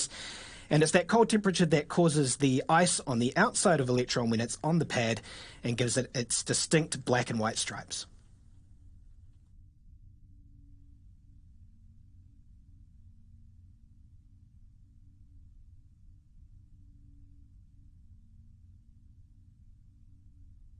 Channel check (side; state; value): both; identical; correlation 1.00